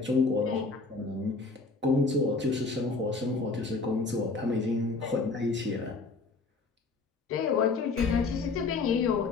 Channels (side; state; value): right; quieter; 4.0 dB